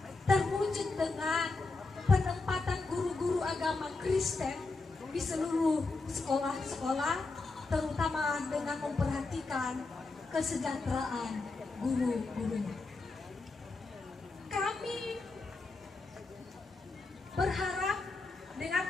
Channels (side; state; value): right; quieter; 3.6 dB